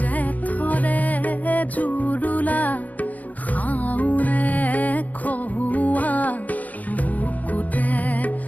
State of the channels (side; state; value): right; late; 0.077 ms